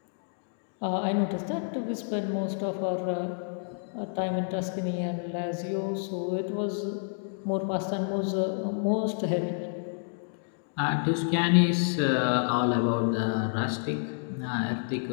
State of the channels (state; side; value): silent; right; digital silence